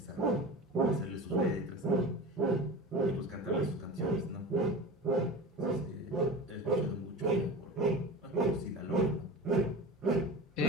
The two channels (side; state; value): both; normal; correlation 0.32